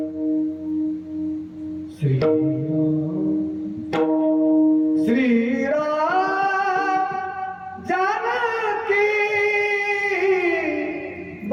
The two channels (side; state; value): both; identical; correlation 1.00